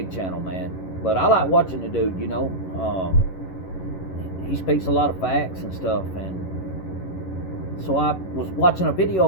channel, man. But I like watching the dude. He speaks a lot of facts and stuff, and so I was watching a video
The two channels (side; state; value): right; late; 11 ms